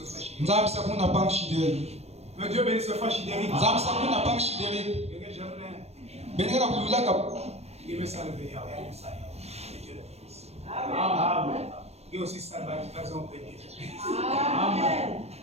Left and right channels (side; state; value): left; late; 0.31 ms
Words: frère Chidéry. Que Dieu bénisse le frère Chidéry. Il me salve. Amen. Et aussi salve à Amen.